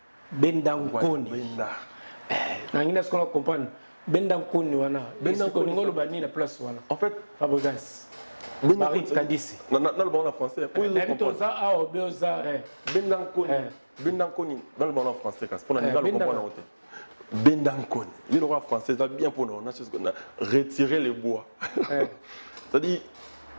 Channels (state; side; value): inverted; both; correlation -1.00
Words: Bendankoni. Nangina ce qu'on comprendre. Bendankoni wana. Bendankoni ngolo bani la place wana. En fait, Fabrice. Marie Kadisi. Dans le bon en français. Pour ils comprendre. Bendankoni. Dans le bon en français, parce qu'on a le comprendre. Bendankoni. Il aura français, ça bien pour nous. On a retiré les bois. C'est-à-dire,